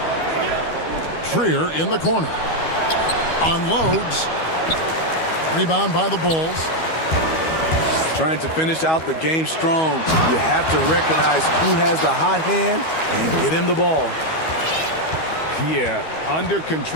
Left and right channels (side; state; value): right; late; 12 ms